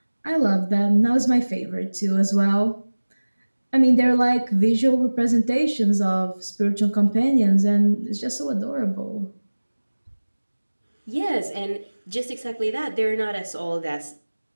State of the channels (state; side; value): inverted; both; correlation -1.00